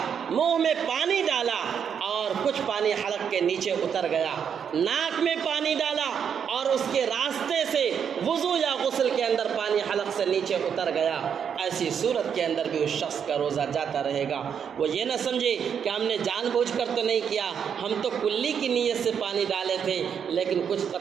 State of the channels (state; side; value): quieter; left; 7.6 dB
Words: منہ میں پانی ڈالا اور کچھ پانی حلق کے نیچے اتر گیا، ناک میں پانی ڈالا اور اس کے راستے سے وضو یا غسل کے اندر پانی حلق سے نیچے اتر گیا، ایسی صورت کے اندر بھی اس شخص کا روزہ جاتا رہے گا۔ وہ یہ نہ سمجھے کہ ہم نے جان بوجھ کر تو نہیں کیا، ہم تو کلی کی نیت سے پانی ڈالے تھے لیکن کچھ